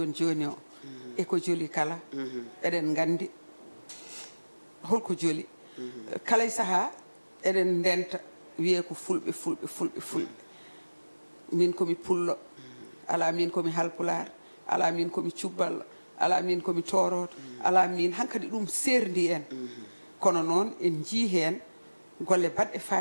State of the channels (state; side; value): inverted; both; correlation -1.00